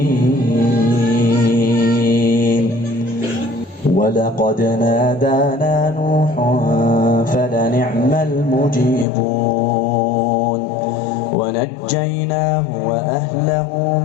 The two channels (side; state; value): right; drops out; at 9.1 s